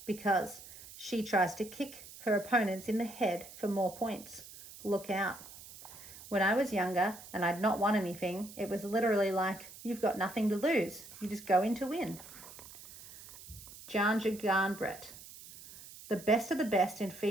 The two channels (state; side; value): noise; right; hiss, 16 dB below the sound